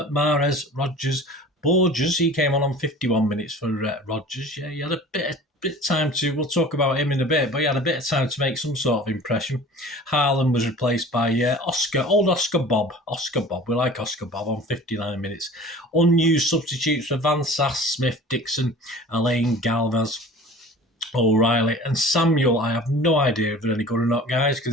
Mahrez, Rodgers, Borges, he came on 51 minutes for Rodgers. Yeah, he had a bit of time to, we'll talk about him in a bit, but he had a bit of time to make some sort of impression. Haaland was replaced by Oscar Bob. We like Oscar Bob on 59 minutes. Unused substitutes for Van Sass, Smith, Dixon, Alain Galvez, O'Reilly and Samuel. I have no idea if they're any good or not, guys,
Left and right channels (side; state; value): both; normal; correlation 0.42